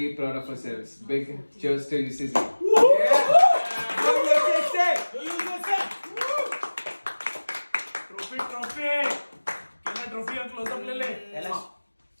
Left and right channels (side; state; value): both; inverted; correlation -1.00